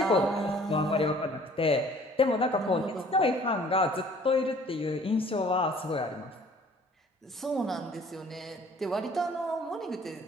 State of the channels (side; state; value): both; normal; correlation 0.54